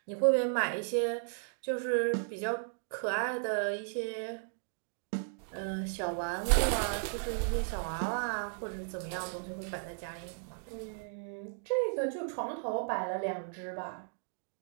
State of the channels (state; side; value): silent; left; digital silence